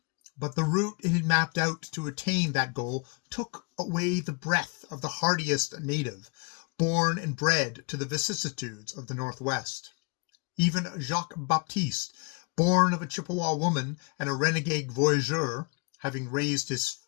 But the route it had mapped out to attain that goal took away the breath of the hardiest native, born and bred to the vicissitudes of the Northwest. Even Jacques Baptiste, born of a Chippewa woman and a renegade voyageur, having raised his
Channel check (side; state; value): right; quieter; 32.1 dB